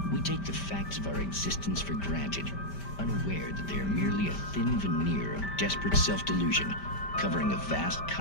We take the facts of our existence for granted, unaware that they are merely a thin veneer of desperate self-delusion, covering a vast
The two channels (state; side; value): late; right; 5.1 ms